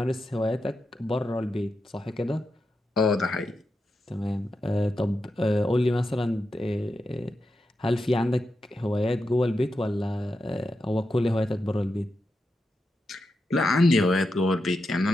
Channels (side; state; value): both; normal; correlation 0.88